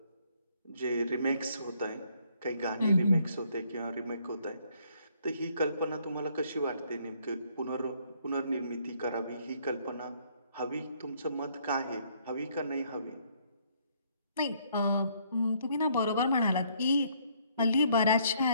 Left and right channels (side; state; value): both; inverted; correlation -0.67